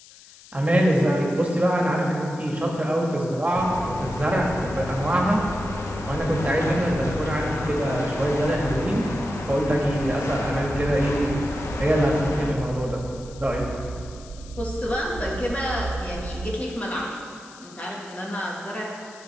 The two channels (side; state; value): left; noise; hiss, 21 dB below the sound